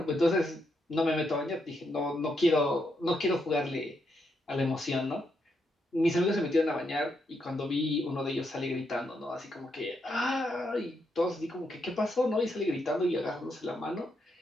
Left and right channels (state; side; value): normal; both; correlation 0.80